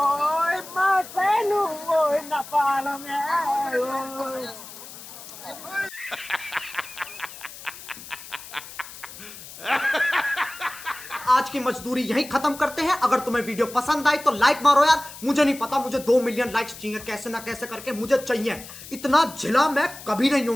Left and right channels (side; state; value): left; noise; hiss, 15 dB below the sound